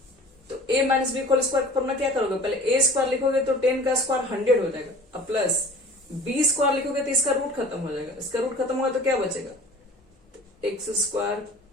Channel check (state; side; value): normal; both; correlation 0.43